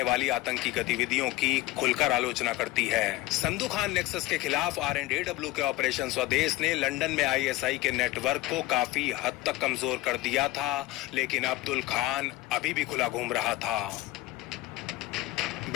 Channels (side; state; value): right; quieter; 17.7 dB